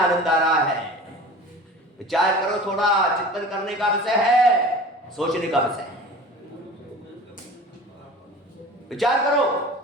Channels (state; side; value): normal; both; correlation 0.39